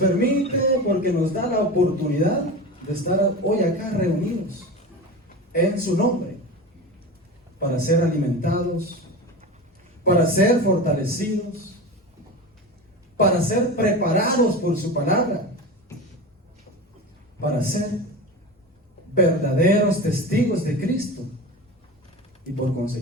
porque nos da la oportunidad de estar hoy acá reunidos en su nombre para ser alimentados, para ser fortalecidos, para ser preparados por su palabra, para ser verdaderos testigos de Cristo y por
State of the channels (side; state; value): both; normal; correlation 0.28